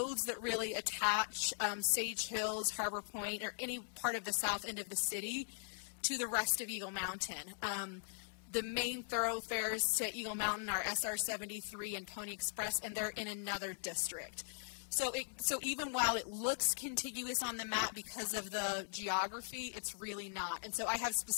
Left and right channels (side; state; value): right; silent; digital silence